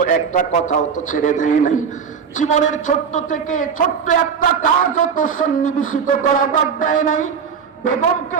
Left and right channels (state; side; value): quieter; left; 6.5 dB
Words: একটা কথাও তো ছেড়ে দেয় নাই, জীবনের ছোট্ট থেকে ছোট্ট একটা কাজও তো সন্নিবেশিত করা বাদ দেয় নাই। বেগমকে